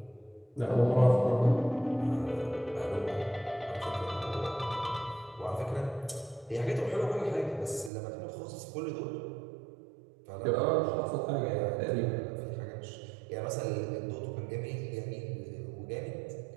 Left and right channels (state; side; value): drops out; left; at 7.9 s